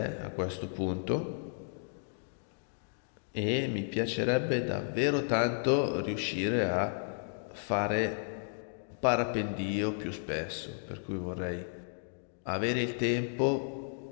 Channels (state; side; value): silent; right; digital silence